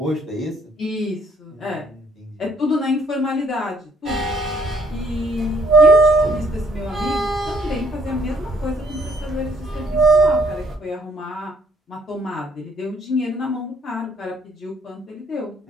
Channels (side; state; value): both; normal; correlation 0.65